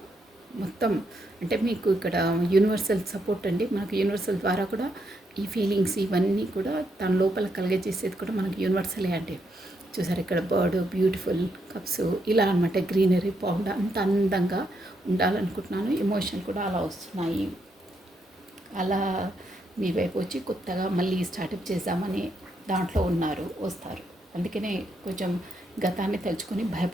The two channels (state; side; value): normal; both; correlation 0.78